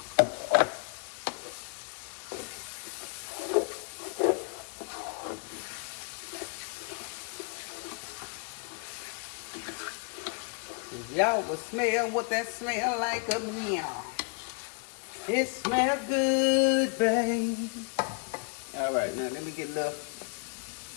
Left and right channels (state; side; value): quieter; right; 34.4 dB